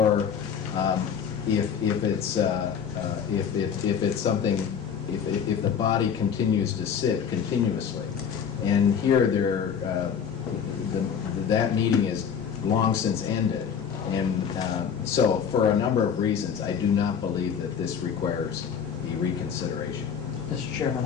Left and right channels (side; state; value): right; quieter; 7.4 dB